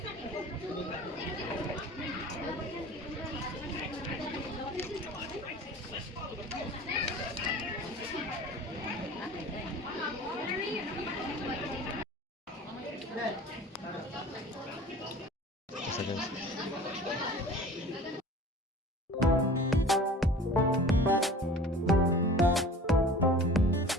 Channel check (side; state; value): both; normal; correlation 0.42